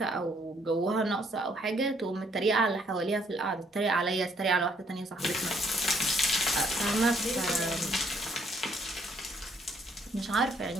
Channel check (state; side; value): normal; both; correlation 0.67